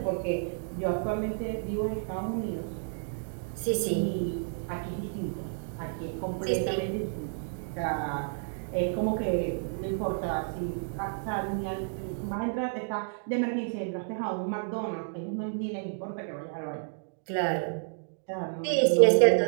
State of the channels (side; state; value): left; silent; digital silence